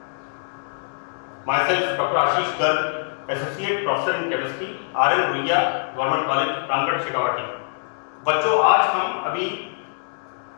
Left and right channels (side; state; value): right; silent; digital silence